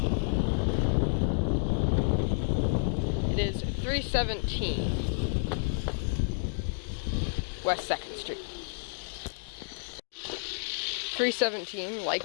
It is 317 West 2nd Street. 317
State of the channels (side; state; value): right; silent; digital silence